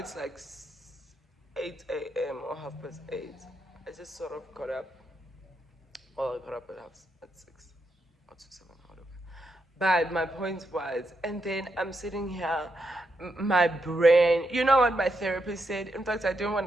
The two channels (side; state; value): both; normal; correlation 0.82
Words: like 8 a.m. or 8:30. I just sort of got up. Well, I got up at 6 or to 7, whatever. But my point was, and then I'm sitting here, my brain, you know what my therapist said? In fact, I don't want